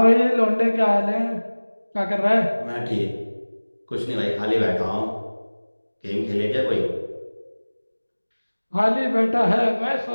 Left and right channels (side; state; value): both; inverted; correlation -1.00